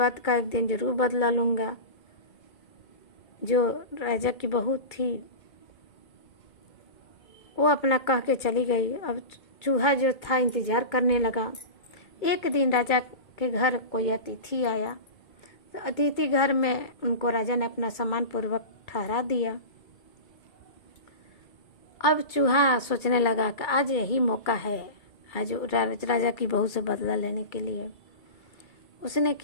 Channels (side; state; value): right; late; 2.3 ms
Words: का एक दिन जरूर बदला लूँगा। जो राजा की बहू थी वो अपना कह के चली गई। अब चूहा जो था इंतज़ार करने लगा। एक दिन राजा के घर कोई अतिथि आया। तो अतिथि घर में उनको राजा ने अपना सम्मान पूर्वक ठहरा दिया। अब चूहा सोचने लगा कि आज यही मौका है, आज राजा की बहू से बदला लेने के लिए। उसने